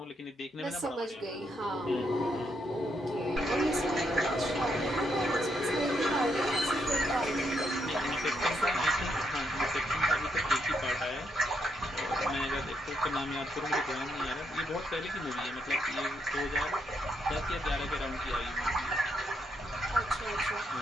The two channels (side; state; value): both; normal; correlation 0.77